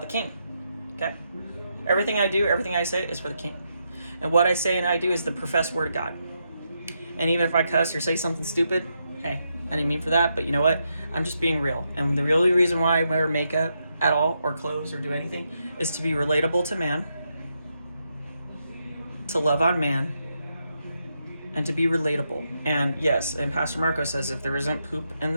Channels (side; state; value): both; inverted; correlation -0.82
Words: the King. Okay? Everything I do, everything I say is for the King. And what I say and I do is the professed word of God. And even if I cuss or say something stupid, hey, I didn't mean for that, but you know what? I'm just being real. And the only reason why I wear makeup at all, or clothes, or do anything, is to be relatable to man, to love on man, and to be relatable. And yes, and Pastor Marco says if there isn't poop in